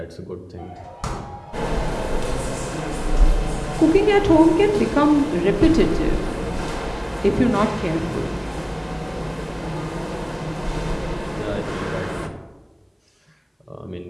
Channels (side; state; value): both; identical; correlation 1.00